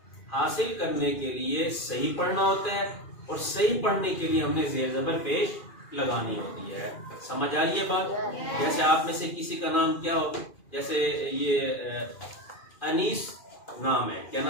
حاصل کرنے کے لیے صحیح پڑھنا ہوتا ہے، اور صحیح پڑھنے کے لیے ہم نے زیر زبر پیش لگانی ہوتی ہے. سمجھ آ رہی ہے بات؟ جیسے آپ میں سے کسی کا نام کیا ہو، جیسے یہ انیس نام ہے. کیا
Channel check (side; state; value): right; late; 2.4 ms